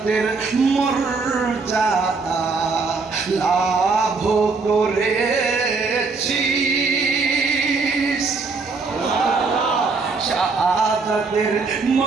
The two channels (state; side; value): quieter; left; 4.3 dB